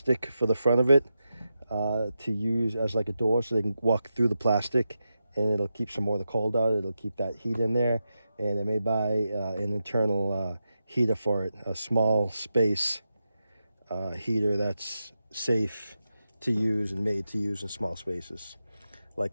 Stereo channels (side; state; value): both; inverted; correlation -0.89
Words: for the front of it to use as like a door so they can walk through the plastic, and it'll keep some more of the cold out. It'll keep that heat in there, and I may buy an internal heater for it, a small space heater that's safe to use and made to use in small spaces,